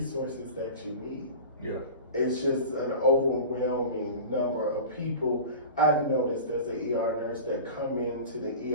that you need. Yeah. It's just an overwhelming number of people. I've noticed as an ER nurse that come into the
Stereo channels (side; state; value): both; inverted; correlation -0.34